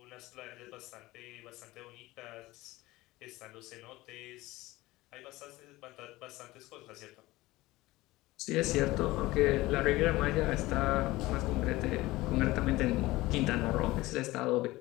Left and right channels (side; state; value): right; quieter; 19.0 dB